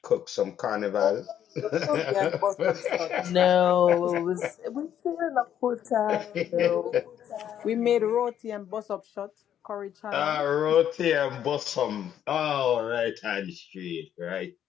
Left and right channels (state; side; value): quieter; right; 10.0 dB